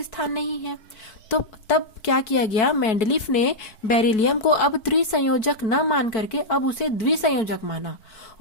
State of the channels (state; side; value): late; right; 4.6 ms